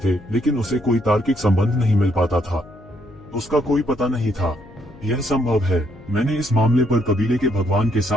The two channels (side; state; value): left; noise; hum, 23 dB below the sound